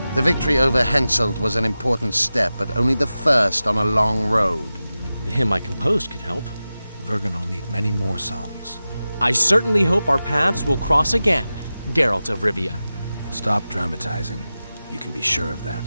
The victory over Henselt was an important step, but only the first on a long road. The hymn I composed could help. Vergen will need many more songs. I certainly hope our paths will cross again, Geralt of Rivia. Stop dramatizing. You can be sure of that.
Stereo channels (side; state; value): both; inverted; correlation -0.94